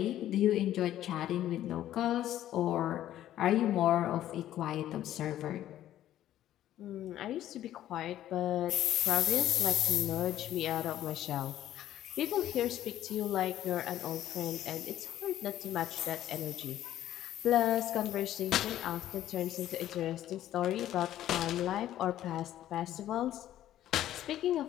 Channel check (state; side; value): quieter; right; 12.6 dB